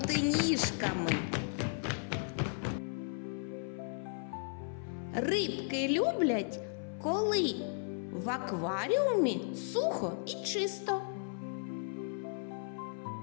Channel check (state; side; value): silent; right; 54 dB below the other